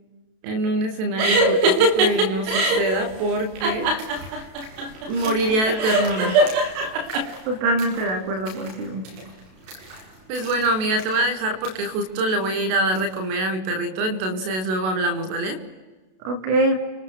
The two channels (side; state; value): left; late; 32 ms